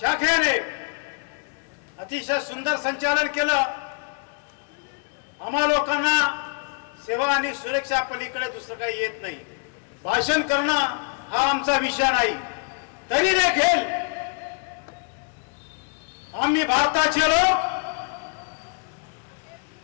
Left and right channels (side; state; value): right; quieter; 38.3 dB